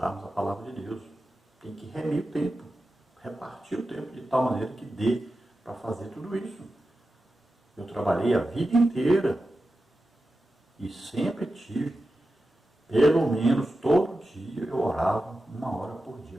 a palavra de Deus. Tem que remir o tempo, repartir o tempo de tal maneira que dê para fazer tudo isso. Eu trabalhei a vida inteira e sempre tive, pelo menos todo dia eu orava 1 hora por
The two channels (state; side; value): normal; both; correlation 0.92